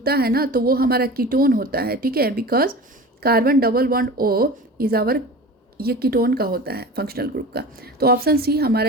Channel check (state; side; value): normal; both; correlation 0.35